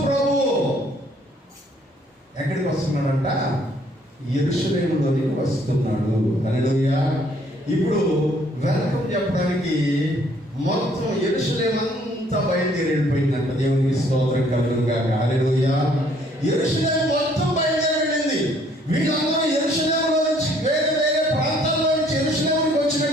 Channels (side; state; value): both; normal; correlation 0.63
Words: ప్రభు ఎక్కడికి వస్తున్నాడంట? యెరూషలేములోనికి వస్తున్నాడు. హల్లెలూయా. ఇప్పుడు వెల్కమ్ చెప్పడానికి మొత్తం యెరూషలేము అంతా బయలుదేరి వెళ్ళిపోయిందంట. దేవునికి స్తోత్రం కలుగును గాక. హల్లెలూయా. యెరూషలేము మొత్తం బయలుదేరి వెళ్ళింది. వీళ్ళందరూ యెరూషలేములో నుంచి వేరే వేరే ప్రాంతాల్లో నుంచి యెరూషలేముకి